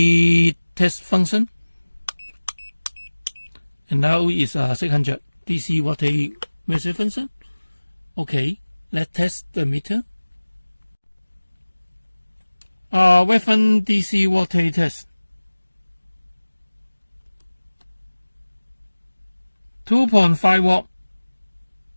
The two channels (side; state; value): both; inverted; correlation -1.00